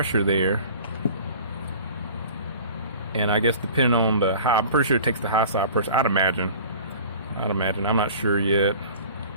there. And I guess depending on the high, I'm pretty sure it takes the high side pressure. I'd imagine. I'm not sure yet.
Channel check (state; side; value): inverted; both; correlation -0.43